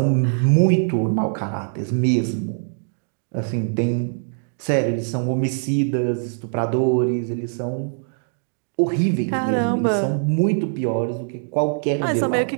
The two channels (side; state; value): left; silent; digital silence